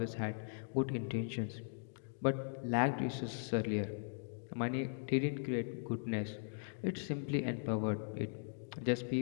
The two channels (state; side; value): silent; right; digital silence